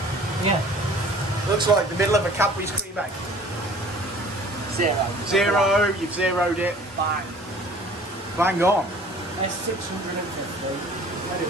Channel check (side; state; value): both; normal; correlation 0.49